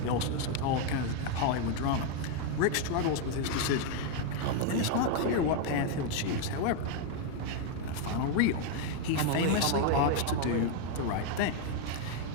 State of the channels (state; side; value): different; both; correlation 0.01